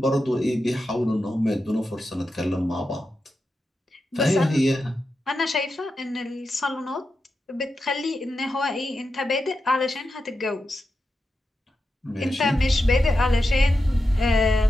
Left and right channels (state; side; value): normal; both; correlation 0.89